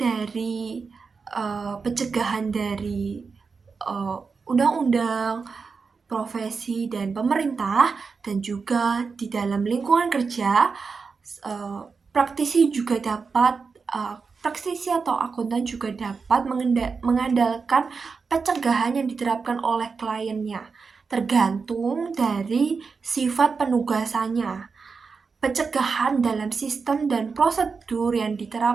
pencegahan dari undang-undang, profesi, dan pemerintah, dan juga di dalam lingkungan kerja, praktisi atau akuntan juga dapat mengandalkan pencegahan yang diterapkan oleh kliennya, tergantung dari sifat penugasannya. Pencegahan dalam sistem dan prosedur yang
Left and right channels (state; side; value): quieter; left; 5.0 dB